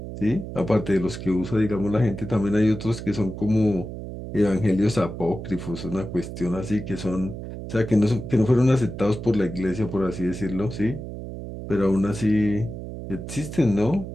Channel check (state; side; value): noise; right; hum, 9 dB below the sound